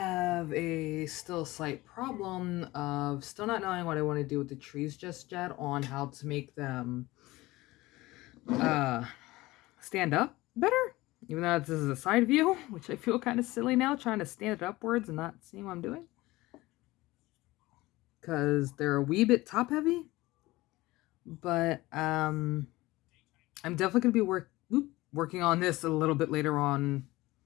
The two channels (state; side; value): quieter; right; 19.4 dB